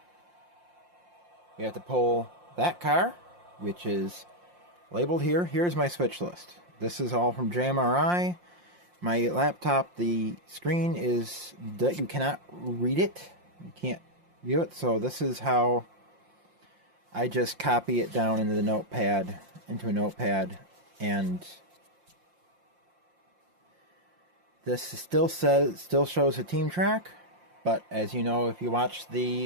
We have to pull that car, which is labeled here. Here's my switch list. This is all from JMRI. My laptop, the screen is that you cannot read it. You can't view it. So this is how I just copy it down into a notepad, and this still shows a team track, but as you know, if you watch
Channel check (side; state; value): left; late; 5.7 ms